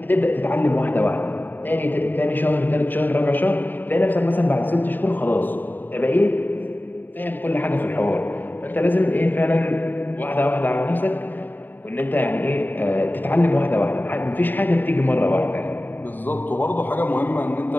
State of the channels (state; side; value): late; right; 0.090 ms